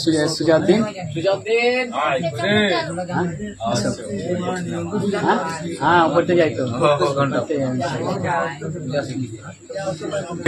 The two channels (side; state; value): both; identical; correlation 1.00